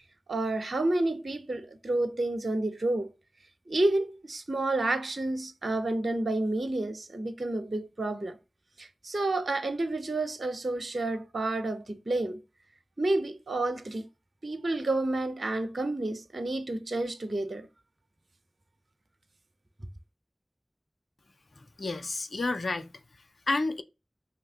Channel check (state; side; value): normal; both; correlation 0.92